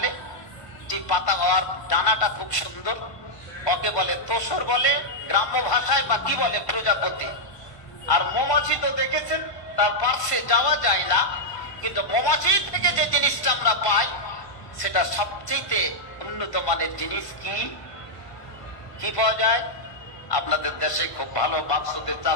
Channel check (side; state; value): right; late; 1.5 ms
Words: যে পাতা আর ডানাটা খুব সুন্দর, ওকে বলে তসর বলে গ্রাম্য ভাষায়, বা কি বলে? প্রজাপতি। আর মৌমাছি তো দেখেছেন, তার পার্শ্বে যাওয়া যায় না, কিন্তু মৌমাছি থেকে যে জিনিসটা আমরা পাই সেটা সবচেয়ে উন্নত মানের জিনিস। কি কি পাওয়া যায়? আপনাদের দেশে খুব ভালো বাক্সতে